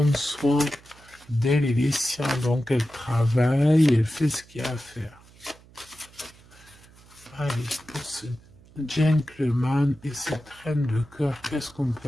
soin d'elle et des siens. Donc elle travaille, elle fait ce qu'il y a à faire. Allez, pour ce gentleman et cette reine de cœur, qu'est-ce qu'on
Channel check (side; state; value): right; noise; hum, 25 dB below the sound